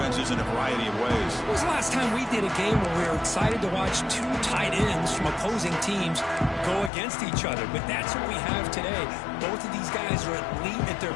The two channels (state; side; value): drops out; right; at 6.9 s